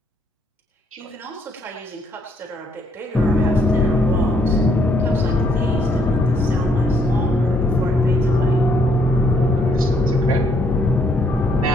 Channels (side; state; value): both; normal; correlation 0.69